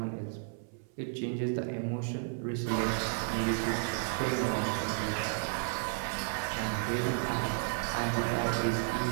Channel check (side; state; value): left; silent; 56 dB below the other